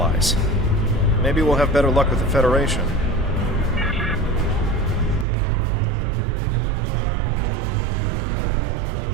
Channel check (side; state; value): left; drops out; at 5.2 s